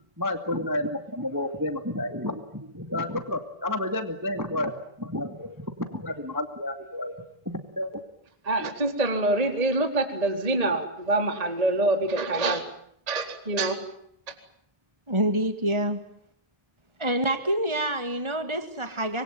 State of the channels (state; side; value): late; left; 1.8 ms